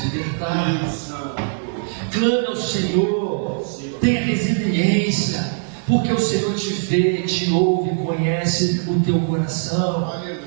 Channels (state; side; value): silent; left; digital silence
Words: libertar. Clame ao Senhor. Tenha resiliência, porque o Senhor te vê, te ouve, conhece o teu coração.